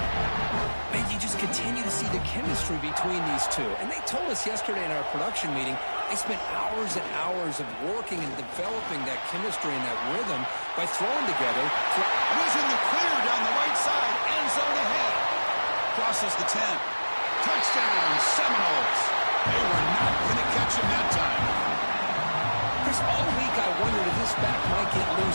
And you just continue to see the chemistry between these two. And they told us yesterday in our production meeting, they spent hours and hours of working and developing that chemistry and that rhythm by throwing together. He's in the clear down the right side. End zone ahead. Crosses the 10. Touchdown, Seminoles. They were not going to catch him that time. Chris, all week I wondered if this back might get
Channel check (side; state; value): both; inverted; correlation -1.00